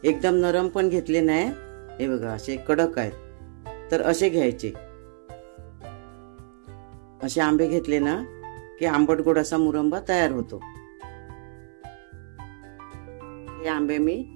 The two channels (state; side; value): silent; left; 61 dB below the other